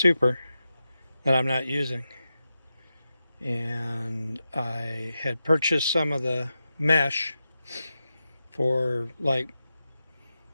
that I'm not using, and I had purchased some of the mesh for like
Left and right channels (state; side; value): inverted; both; correlation -0.91